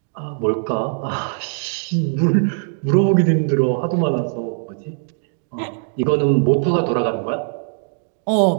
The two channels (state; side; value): silent; left; digital silence